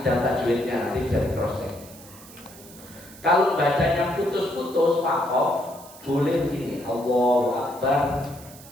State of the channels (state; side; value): noise; right; hiss, 19 dB below the sound